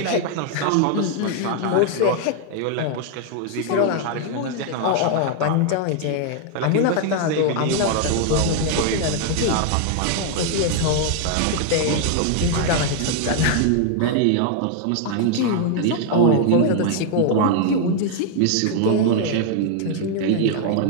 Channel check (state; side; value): different; both; correlation 0.00